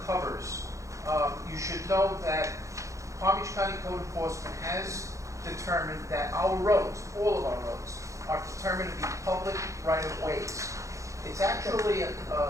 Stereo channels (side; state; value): left; late; 0.15 ms